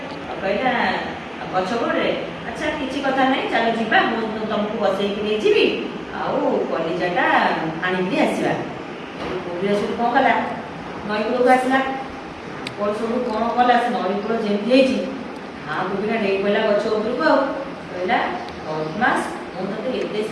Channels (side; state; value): both; identical; correlation 1.00